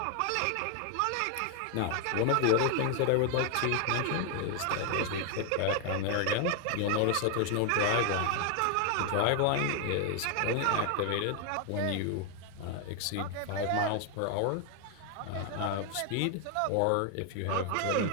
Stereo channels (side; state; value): both; different; correlation 0.00